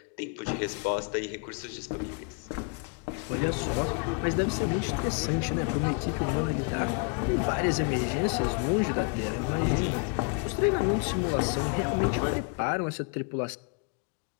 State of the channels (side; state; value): right; quieter; 35.4 dB